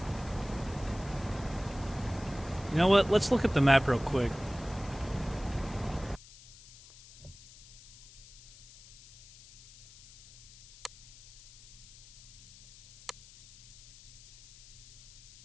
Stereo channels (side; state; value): left; noise; hiss, 20 dB below the sound